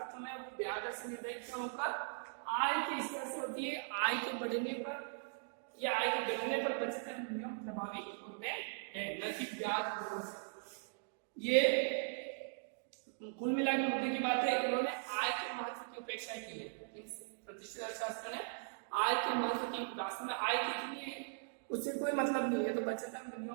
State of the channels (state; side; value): silent; left; digital silence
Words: में वो ब्याज दर से निर्धारित न होकर आय के स्तर से होती है। आय के बढ़ने पर या आय के घटने पर बचत एवं विनियोग प्रभावित होते हैं, न कि ब्याज दरों से। ये कुल मिला के मुद्दे की बात है। इन्होंने आय के महत्व की उपेक्षा की है। प्रतिष्ठित अर्थशास्त्र ने आय के महत्व की, वास्तव में आय कितनी है उससे कोई मतलब नहीं है, तो बचत एवं